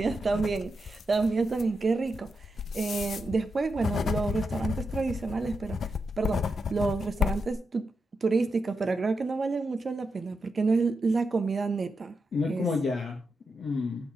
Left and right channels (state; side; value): normal; both; correlation 0.86